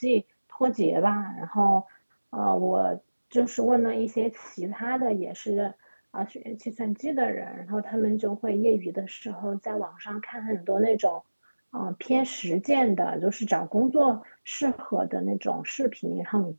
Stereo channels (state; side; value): inverted; both; correlation -1.00